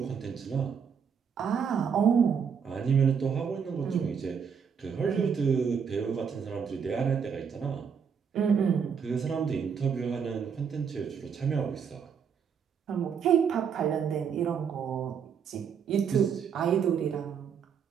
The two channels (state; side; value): quieter; left; 6.9 dB